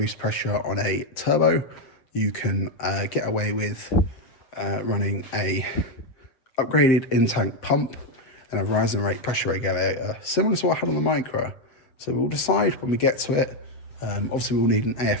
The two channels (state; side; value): late; right; 7.6 ms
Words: pressure on a turbo, you can get away with running a upgraded in-tank pump and a rising rate pressure regulator, similar to what I had on the Micra. So we'll decide when we get to it. Obviously we'll need an